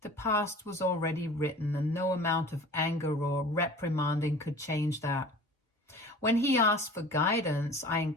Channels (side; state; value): both; normal; correlation 0.42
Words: The past was already written, and no amount of anger or reprimanding could change that. When he asked for guidance, I